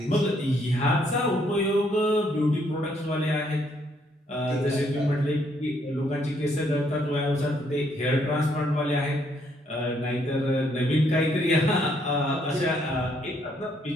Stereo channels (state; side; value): normal; both; correlation 0.70